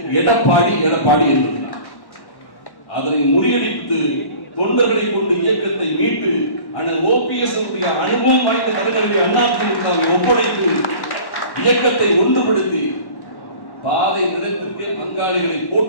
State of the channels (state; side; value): late; right; 1.1 ms